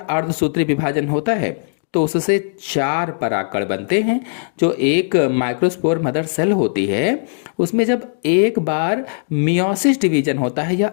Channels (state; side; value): silent; right; digital silence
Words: विभाजन होता है तो उससे 4 परागकण बनते हैं। जो एक माइक्रोस्पोर मदर सेल होती है उसमें जब एक बार मियोसिस डिवीजन होता है या